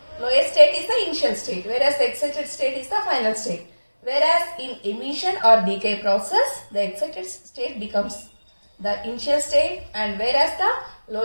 lowest state is the initial state, whereas the excited state is the final state. Whereas in emission or decay process, the excited state becomes the initial state, and whereas the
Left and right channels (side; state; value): both; inverted; correlation -1.00